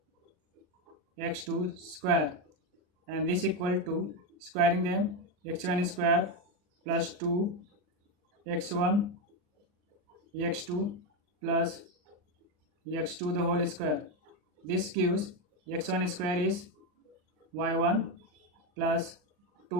x2 square and this equal to squaring them, x1 square plus 2 x1 x2 plus x2 the whole square. This gives x1 square is y1 plus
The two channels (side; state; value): left; late; 39 ms